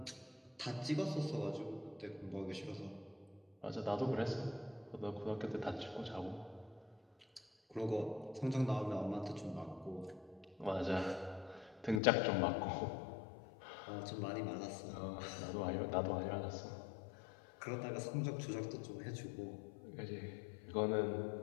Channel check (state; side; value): drops out; right; at 12.0 s